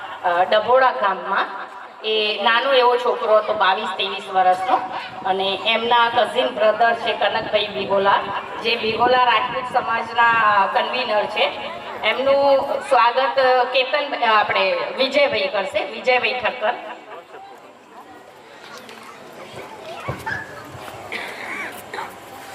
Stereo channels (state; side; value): identical; both; correlation 1.00